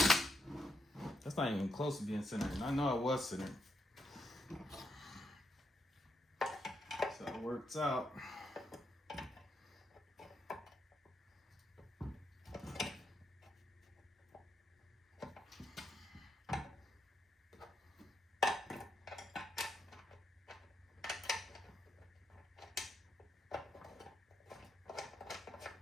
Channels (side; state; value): both; normal; correlation 0.80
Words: That's not even close to being centered. And I know it was centered. So it works out.